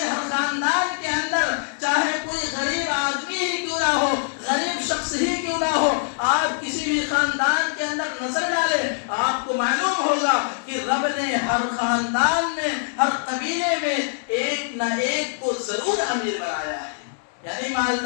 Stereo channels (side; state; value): right; silent; digital silence